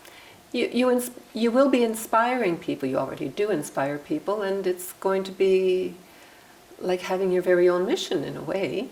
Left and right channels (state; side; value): identical; both; correlation 1.00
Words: you will be inspiring people. You already do inspire people, and it's going to be like having your very own mission in a way,